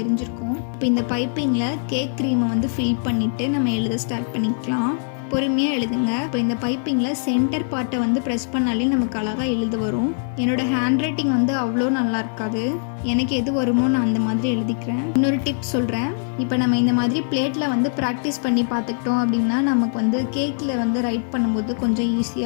தெரிஞ்சிருக்கும். இப்போ இந்த பைப்பிங்கில் கேக் க்ரீமை வந்து ஃபில் பண்ணிவிட்டு நம்ம எழுத ஸ்டார்ட் பண்ணிக்கலாம். பொறுமையாக எழுதுங்க. இப்போ இந்த பைப்பிங்கில் சென்டர் பார்ட்டை வந்து ப்ரெஸ் பண்ணாலே நமக்கு அழகாக எழுத வரும். என்னோடய ஹேண்ட் ரைட்டிங் வந்து அவ்வளோ நல்லா இருக்காது. எனக்கு எது வருமோ நான் அந்த மாதிரி எழுதிக்கிறேன். இன்னொரு டிப் சொல்கிறேன். இப்போ நம்ம இந்த மாதிரி பிளேட்டில் வந்து ப்ராக்டிஸ் பண்ணி பார்த்துக்கிட்டோம் அப்படின்னா நமக்கு வந்து கேக்கில் வந்து ரைட் பண்ணும்போது கொஞ்சம்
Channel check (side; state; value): right; silent; digital silence